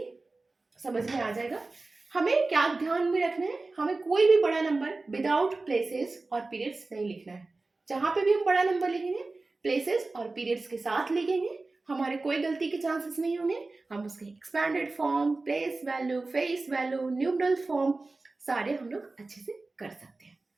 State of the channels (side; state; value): left; quieter; 3.4 dB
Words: समझ में आ जाएगा. हमें क्या ध्यान में रखना है, हमें कोई भी बड़ा नंबर विदाउट प्लेसेस और पीरियड्स नहीं लिखना है. जहाँ पे भी हम बड़ा नंबर लिखेंगे प्लेसेस और पीरियड्स के साथ लिखेंगे, हमारे कोई गलती के चांसेस नहीं होंगे. हम उसके expanded form, place value, face value, numeral form सारे हम लोग अच्छे से कर सकते हैं.